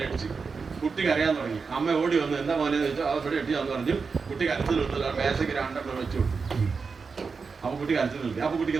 കുട്ടി കരയാൻ തുടങ്ങി. അമ്മ ഓടി വന്ന് എന്താ മോനെ ചോദിച്ചാൽ അവിടെ എട്ടിയാന്ന് പറഞ്ഞു. കുട്ടി കരച്ചിൽ നിർത്തില്ല, മേശയ്ക്ക് 2 വെച്ചു കൊടുത്തു. അപ്പൊ കുട്ടി കരച്ചിൽ നിർത്തി. അപ്പൊ കുട്ടിക്ക്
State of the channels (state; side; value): quieter; left; 5.0 dB